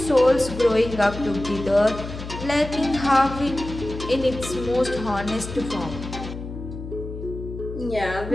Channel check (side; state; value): left; noise; hum, 10 dB below the sound